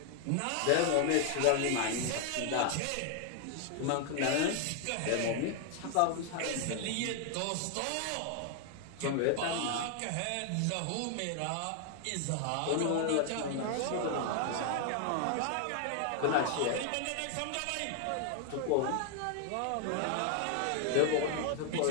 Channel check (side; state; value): both; different; correlation 0.00